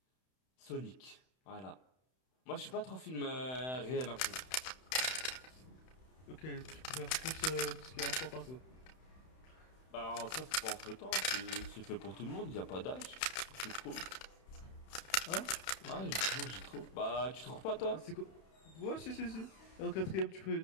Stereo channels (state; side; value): late; right; 31 ms